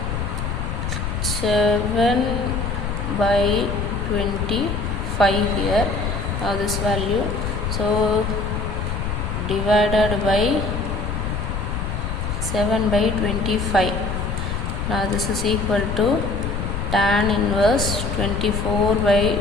7 by 25 here. Now this value, so divided by 7 by 25. Now this is equal to tan inverse 24 by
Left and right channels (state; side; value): noise; left; rumble, 2 dB below the sound